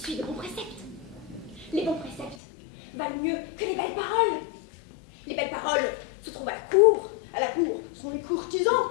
de bons préceptes. Les bons préceptes valent mieux que les belles paroles. Les belles paroles se trouvent à la cour. À la cour sont les courtisans.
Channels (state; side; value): drops out; right; at 2.4 s